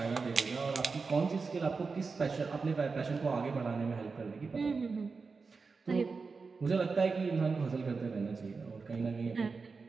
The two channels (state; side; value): quieter; left; 4.6 dB